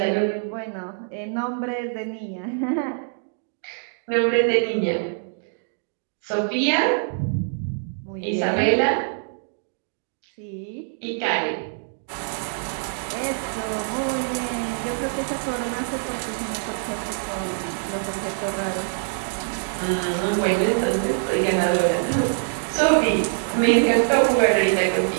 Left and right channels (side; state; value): left; silent; digital silence